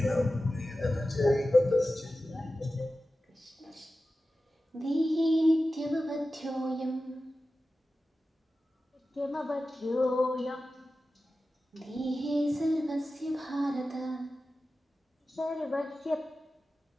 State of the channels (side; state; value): both; normal; correlation 0.94